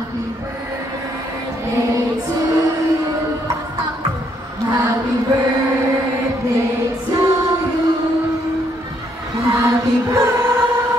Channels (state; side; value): normal; both; correlation 0.71